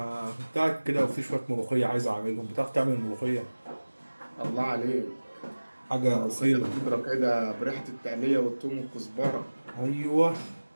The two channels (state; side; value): inverted; both; correlation -1.00